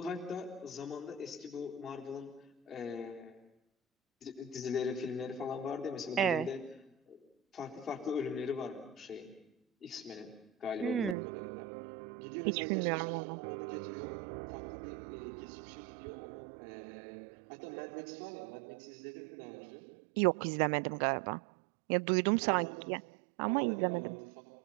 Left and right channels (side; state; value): left; drops out; at 11.2 s